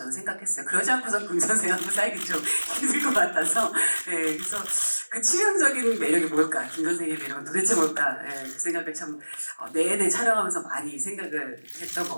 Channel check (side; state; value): both; inverted; correlation -1.00